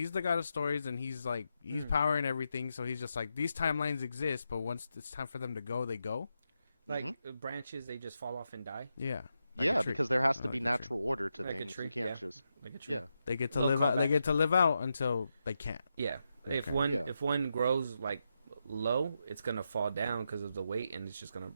the god of stories, and he's like he's powering everything. So he's just like, these timelines exist, but once it's time for them to go, they go. Like branches, they just fall off and die. Yeah. Yeah, because there has to be natural order to things. You can't just like a tree. Yeah. They get to live out. They get to live out until they can't. Yeah. Okay. If one grows like low, it's gonna fall down because of the weight, and it's just gonna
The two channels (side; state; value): both; inverted; correlation -0.85